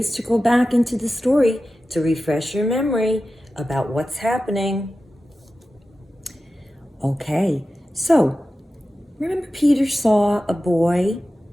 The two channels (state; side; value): normal; both; correlation 0.94